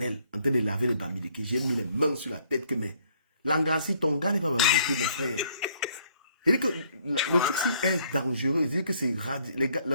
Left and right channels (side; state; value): both; inverted; correlation -0.64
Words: en train de laver les Bamileke. J'ai mis les mains sur la tête que, mais, Langassi, ton gars n'est pas Bamileke, mon frère. Il dit que le truc ci est dangereux. Il dit que c'est